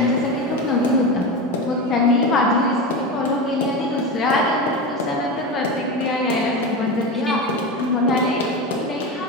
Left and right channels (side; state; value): both; normal; correlation 0.21